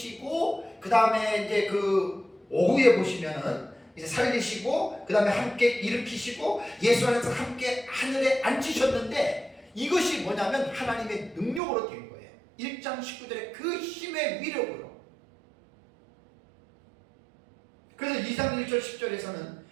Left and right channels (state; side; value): drops out; left; at 11.6 s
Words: 그 다음에 이제 그 오후에 보시면은 이제 살리시고 그 다음에 함께 일으키시고 예수 안에서 함께 하늘에 앉히셨는데 이것이 뭐냐면 하나님의 능력으로 된 거예요. 1장 19절에 그 힘의 위력으로. 그래서 2장 1절 10절에서는